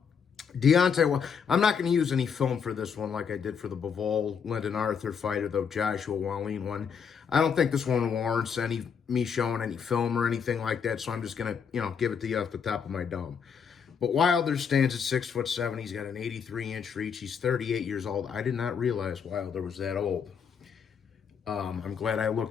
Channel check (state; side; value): quieter; right; 6.7 dB